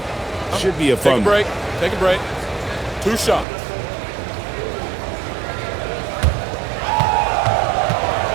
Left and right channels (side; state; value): left; drops out; at 3.5 s